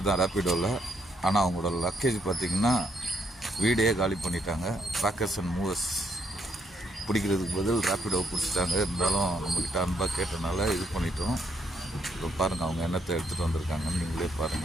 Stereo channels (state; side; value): normal; both; correlation 0.73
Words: தான் ரேப்பிடோவில். ஆனால் அவங்களோட லக்கேஜ் பார்த்திங்கன்னா வீடே காலி பண்ணிட்டாங்க. பேக்கர்ஸ் அண்ட் மூவர்ஸ் பிடிக்கிறதுக்கு பதில் ரேப்பிடோ பிடிச்சிட்டாங்க. இருந்தாலும் நம்மக்கிட்ட அன்பாக கேட்டனால இது பண்ணிட்டோம். இப்போ பாருங்கள் அவங்க என்னத்தை எடுத்துகிட்டு வந்திருக்காங்கன்னு நீங்களே